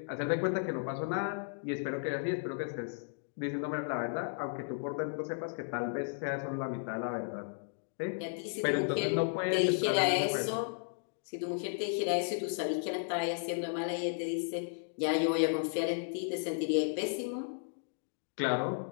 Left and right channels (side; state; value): right; silent; digital silence